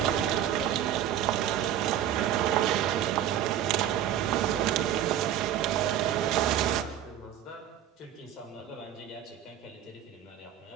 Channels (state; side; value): quieter; left; 10.7 dB